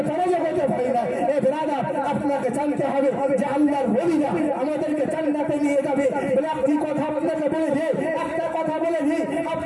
পরাজগতে হয় না। এ ব্রাদার, আপনাকে জানতে হবে যে আল্লাহর ওলিরা আমাদেরকে জান্নাতে নিয়ে যাবে। বলে একটি কথা আপনাকে বলে দিই, একটা কথা বলে দিই,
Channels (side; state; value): both; identical; correlation 1.00